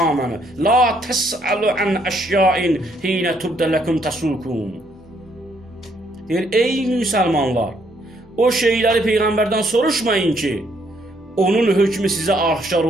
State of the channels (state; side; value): normal; both; correlation 0.70